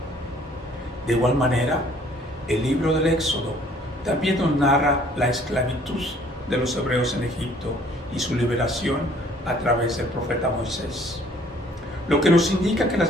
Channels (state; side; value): normal; both; correlation 0.58